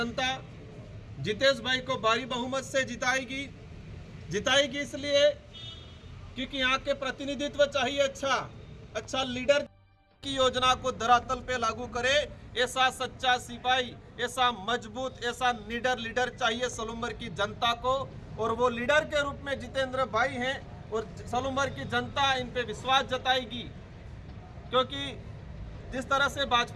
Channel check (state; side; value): identical; both; correlation 1.00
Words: जितेश भाई को भारी बहुमत से जिताएगी इसलिए क्योंकि यहाँ के प्रतिनिधित्व चाहिए, अच्छा लीडर की योजना को धरातल पे लागू करे, ऐसा सच्चा सिपाही, ऐसा मजबूत, ऐसा निडर लीडर चाहिए सलूम्बर की जनता को। और वो लीडर के रूप में जितेंद्र भाई हैं और सलूम्बर की जनता इन पे विश्वास जताएगी। क्योंकि जिस तरह से